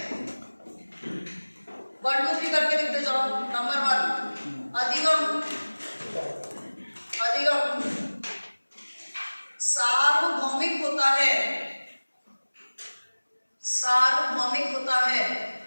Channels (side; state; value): both; inverted; correlation -1.00